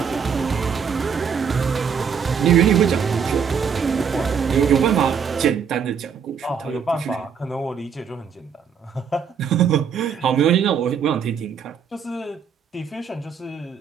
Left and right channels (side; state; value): left; quieter; 6.8 dB